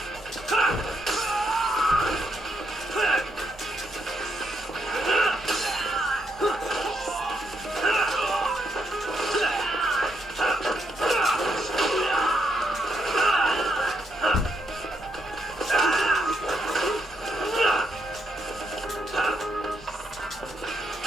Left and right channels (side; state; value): both; normal; correlation 0.78